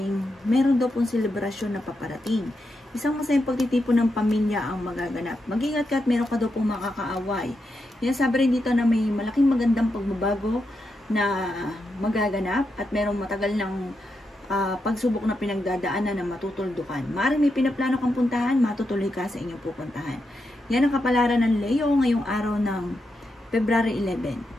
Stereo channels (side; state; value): both; normal; correlation 0.85